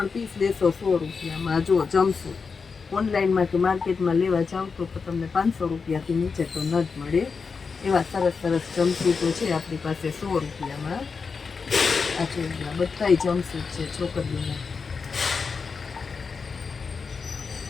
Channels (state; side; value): quieter; right; 5.1 dB